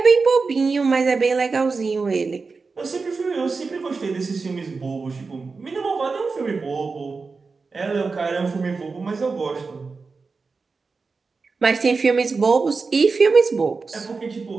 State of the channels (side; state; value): left; quieter; 4.4 dB